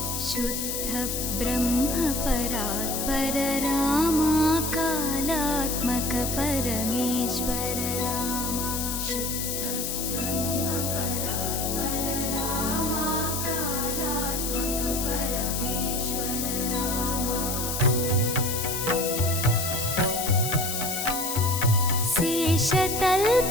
शुद्ध ब्रह्म परात्पर रामा कालात्मक परमेश्वर रामा शुद्ध ब्रह्म परात्पर रामा कालात्मक परमेश्वर रामा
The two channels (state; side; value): noise; left; hiss, 2 dB below the sound